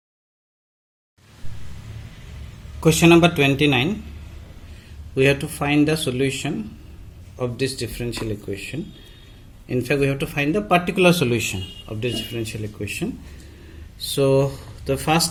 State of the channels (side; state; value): both; identical; correlation 1.00